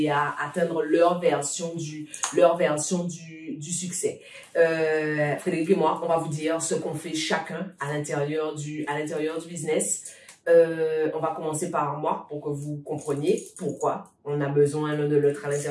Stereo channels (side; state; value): both; identical; correlation 1.00